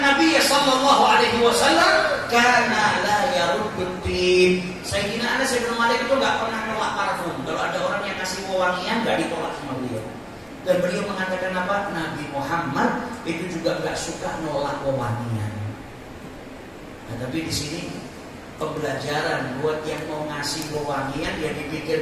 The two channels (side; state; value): both; identical; correlation 1.00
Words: Nabiy sallallahu alaihi wasallam kana la yaruddu. Sayyidina Anas bin Malik itu enggak pernah nolak parfum. Kalau ada orang yang kasih pewangian enggak ditolak sama beliau. Dan beliau mengatakan apa? Nabi Muhammad itu juga nggak suka nolak wewangian. Nah, tapi di sini pembelajaran buat yang mau ngasih wewangian ya